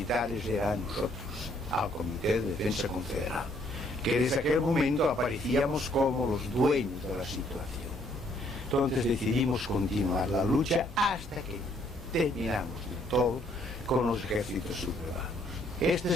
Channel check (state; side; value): normal; both; correlation 0.67